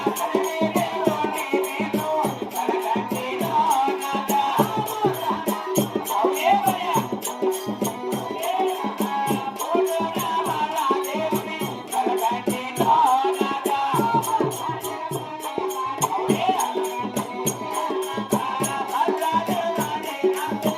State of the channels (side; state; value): both; identical; correlation 1.00